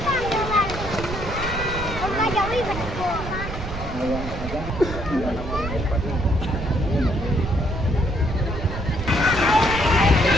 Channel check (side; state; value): right; noise; rumble, 7 dB below the sound